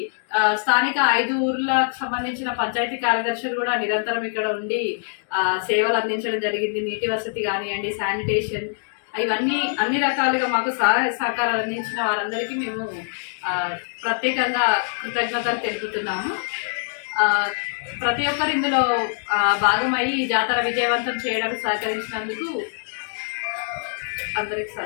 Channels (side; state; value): right; silent; digital silence